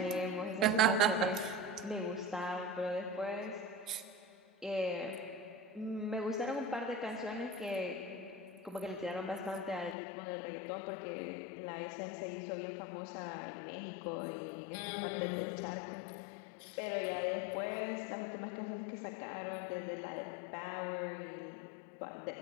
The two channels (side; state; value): right; drops out; at 10.0 s